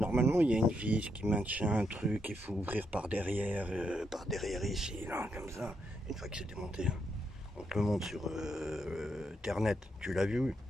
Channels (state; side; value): normal; both; correlation 0.80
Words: il y a une vis qui maintient un truc, il faut ouvrir par derrière ici, là, comme ça. Une fois que c'est démonté, hein. On te le montre sur Internet. Tu l'as vu?